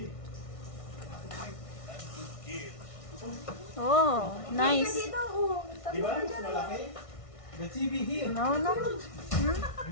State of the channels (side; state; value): right; late; 1.6 ms